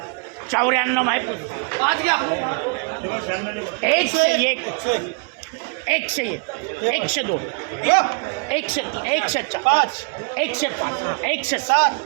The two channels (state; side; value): quieter; left; 34.4 dB